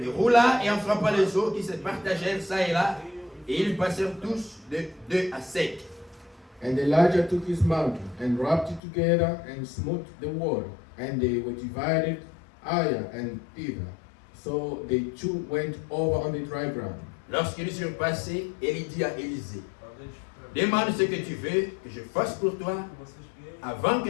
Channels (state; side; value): drops out; right; at 8.8 s